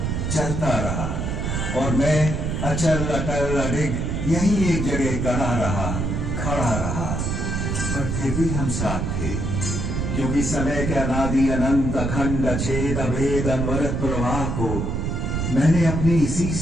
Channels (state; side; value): noise; right; rumble, 1 dB below the sound